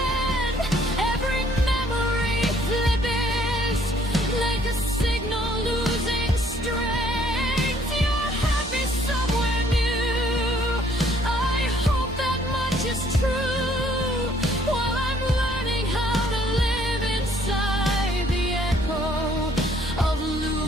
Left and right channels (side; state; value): both; normal; correlation 0.62